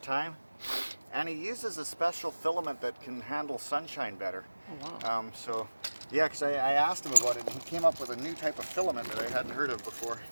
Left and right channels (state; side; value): inverted; both; correlation -1.00